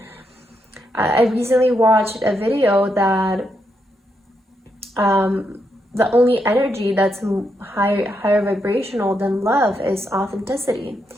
I recently watched a video that the only energy that's higher vibrational than love is authenticity.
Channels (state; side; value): normal; both; correlation 0.81